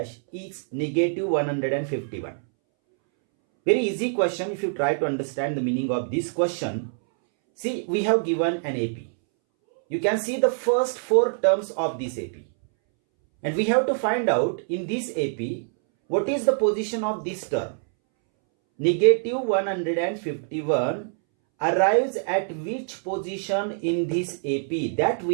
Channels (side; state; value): left; silent; 62 dB below the other